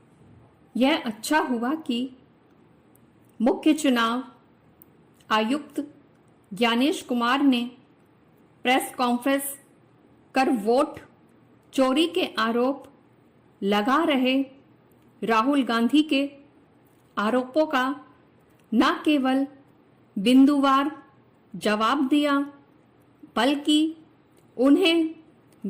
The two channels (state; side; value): identical; both; correlation 1.00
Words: यह अच्छा हुआ कि मुख्य चुनाव आयुक्त ज्ञानेश कुमार ने प्रेस कॉन्फ्रेंस कर वोट चोरी के आरोप लगा रहे राहुल गांधी के आरोपों का न केवल बिंदुवार जवाब दिया, बल्कि उन्हें